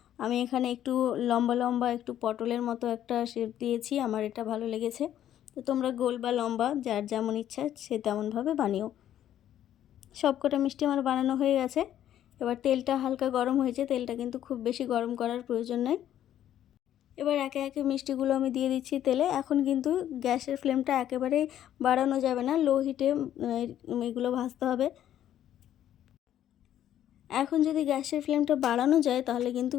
আমি এখানে একটু লম্বা লম্বা একটু পটলের মতো একটা শেপ দিয়েছি, আমার এটা ভালো লেগেছে। তো তোমরা গোল বা লম্বা যার যেমন ইচ্ছা সে তেমনভাবে বানিও। সবকটা মিষ্টি আমার বানানো হয়ে গেছে। এবার তেলটা হালকা গরম হয়েছে, তেলটা কিন্তু খুব বেশি গরম করার প্রয়োজন নেই। এবার একে একে মিষ্টিগুলো আমি দিয়ে দিচ্ছি তেলে। এখন কিন্তু গ্যাসের ফ্লেমটা একেবারেই বাড়ানো যাবে না, লো হিটে এগুলো ভাজতে হবে। এখন যদি গ্যাসের ফ্লেমটা বাড়ানো যায় তাহলে কিন্তু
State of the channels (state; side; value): quieter; right; 11.3 dB